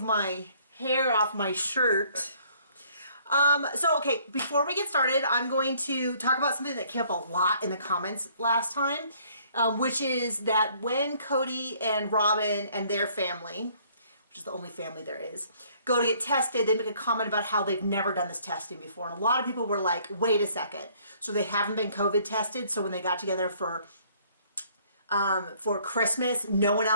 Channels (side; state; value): both; inverted; correlation -0.61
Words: my hair off my shirt. Okay, before we get started, I'm going to talk about something that came up a lot in the comments last time, which is that when Cody and Robin and their family, which is the only family there is, go to get tested, they make a comment about how they've never done this testing before. And a lot of people were like, wait a second. So they haven't been COVID tested, so when they got together for Christmas, no one